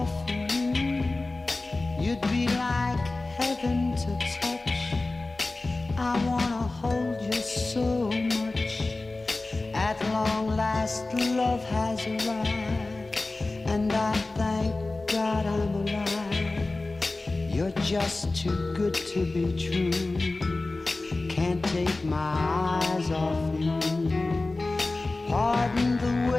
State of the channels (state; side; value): quieter; right; 3.2 dB